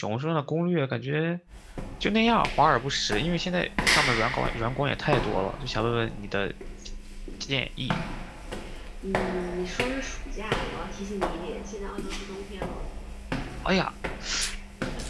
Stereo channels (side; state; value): both; identical; correlation 1.00